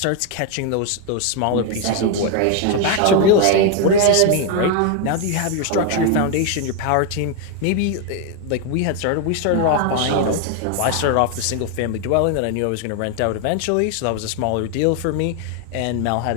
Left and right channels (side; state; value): both; different; correlation 0.01